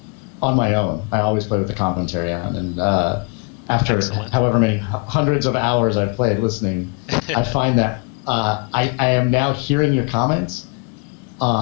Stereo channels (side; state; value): right; quieter; 33.6 dB